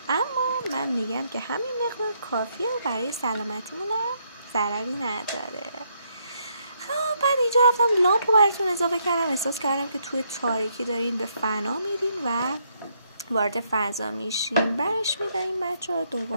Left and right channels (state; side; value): inverted; both; correlation -0.74